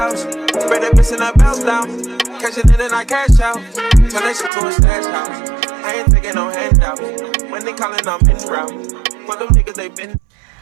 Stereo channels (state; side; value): drops out; left; at 4.5 s